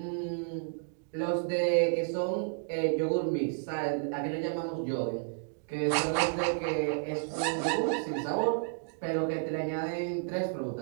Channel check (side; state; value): left; silent; digital silence